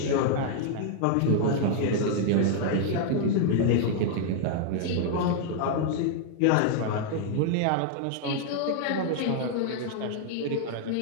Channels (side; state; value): both; different; correlation -0.01